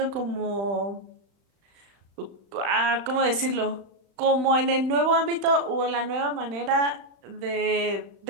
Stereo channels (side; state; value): left; late; 35 ms